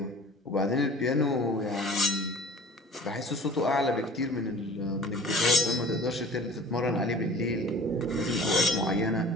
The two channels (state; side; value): normal; both; correlation 0.44